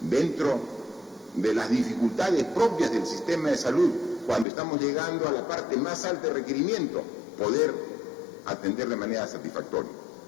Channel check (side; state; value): right; drops out; at 4.5 s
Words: de las dificultades propias del sistema de salud, cuando estamos llegando a la parte más alta de requerimiento, poder atender de manera satisfactoria.